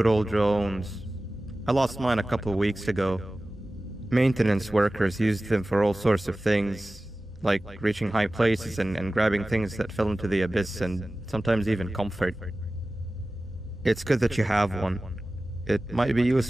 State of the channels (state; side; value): normal; both; correlation 0.96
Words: old drones. I lost mine a couple of weeks ago. Maintenance workers used them for all sorts of things, like reaching high places and grabbing things that fell into the abyss and sometimes even comfort. It's good that you have one. It might be